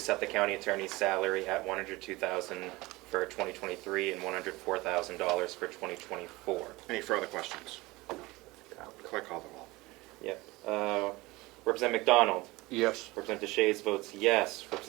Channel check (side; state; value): left; quieter; 21.5 dB